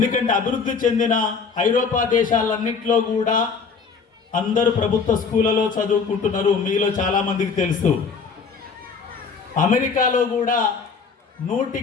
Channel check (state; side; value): quieter; right; 5.4 dB